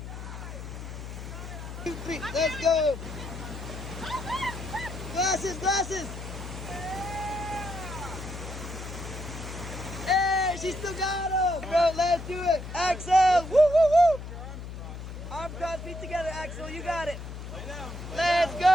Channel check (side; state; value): left; noise; hum, 9 dB below the sound